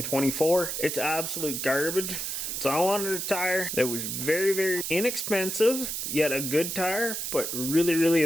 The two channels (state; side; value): noise; right; hiss, 3 dB below the sound